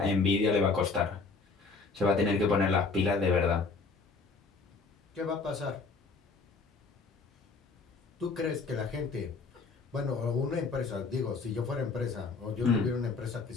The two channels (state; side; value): quieter; right; 4.3 dB